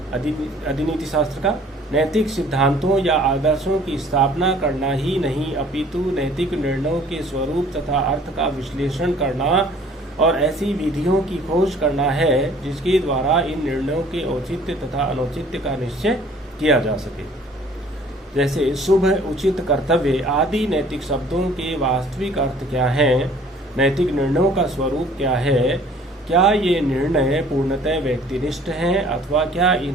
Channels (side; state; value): both; normal; correlation 0.53